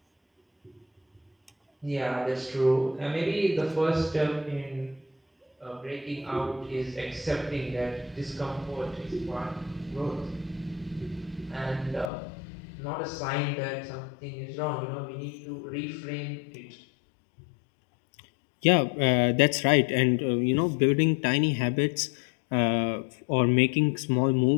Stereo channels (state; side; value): drops out; right; at 12.1 s